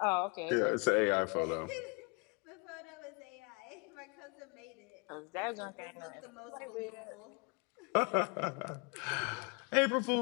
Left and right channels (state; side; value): quieter; right; 32.2 dB